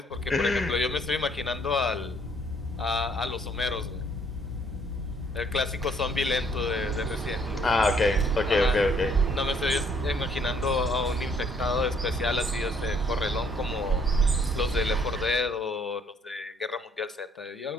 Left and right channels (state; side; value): normal; both; correlation 0.65